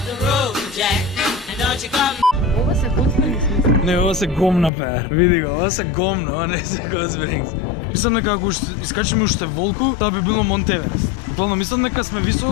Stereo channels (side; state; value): right; drops out; at 4.7 s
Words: Ова се готвени смисла. Не, ова се гомна пеар. Види го, ова се гомна, ова не се Hot Springs. Мислам дека ако искачиме уште волку, тоа би било Монтеверест. Буквално мислам дека сме